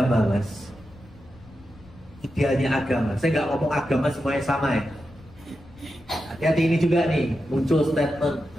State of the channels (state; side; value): noise; left; rumble, 23 dB below the sound